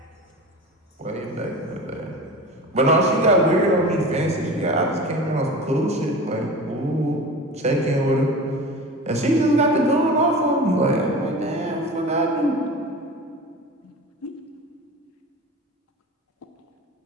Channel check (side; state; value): both; normal; correlation 0.34